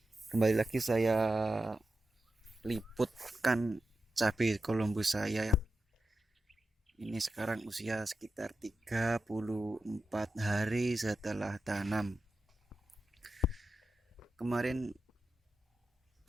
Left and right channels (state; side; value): normal; both; correlation 0.90